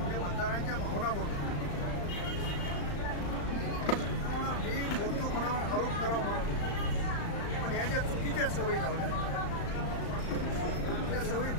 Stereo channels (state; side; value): late; right; 35 ms